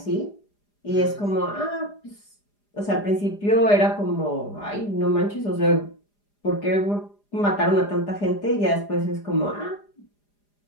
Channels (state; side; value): late; right; 4.9 ms